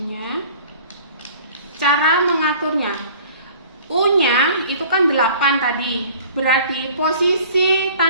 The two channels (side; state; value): both; inverted; correlation -0.48